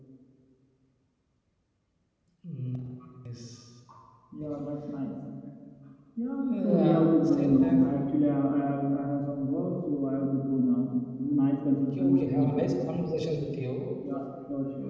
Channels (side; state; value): both; identical; correlation 1.00